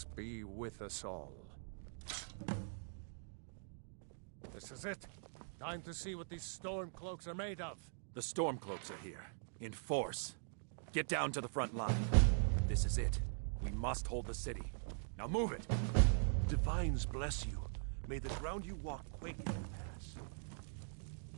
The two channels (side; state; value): left; silent; digital silence